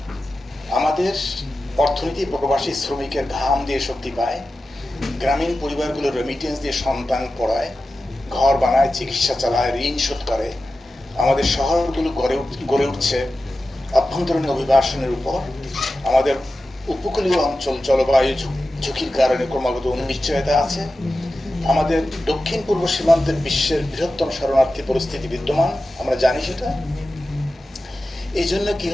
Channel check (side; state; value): both; normal; correlation 0.93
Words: আমাদের অর্থনীতি প্রবাসী শ্রমিকের ঘাম দিয়ে শক্তি পায়, গ্রামীণ পরিবারগুলো রেমিটেন্স দিয়ে সন্তান পড়ায়, ঘর বানায়, চিকিৎসা চালায়, ঋণ শোধ করে। আমাদের শহরগুলো গড়ে উঠছে অভ্যন্তরীণ অভিবাসনের উপর। আমাদের উপকূলীয় অঞ্চল জলবায়ু ঝুঁকির কারণে ক্রমাগত অনিশ্চয়তা আছে। আমাদের দক্ষিণ পূর্ব সীমান্তের বিশ্বের বৃহত্তম শরণার্থী পরিস্থিতি বিদ্যমান, আমরা জানি সেটা। এই জন্য কি